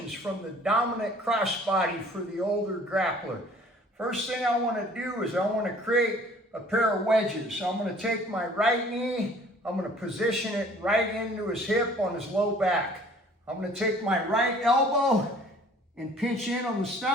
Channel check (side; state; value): both; normal; correlation 0.53